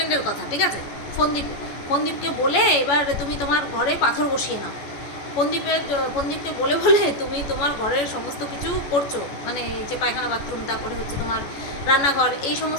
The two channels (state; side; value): late; right; 14 ms